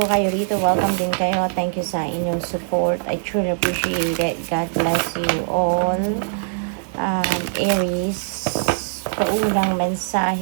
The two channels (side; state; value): left; silent; digital silence